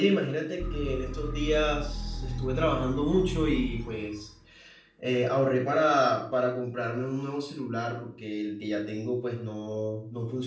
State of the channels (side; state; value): both; identical; correlation 1.00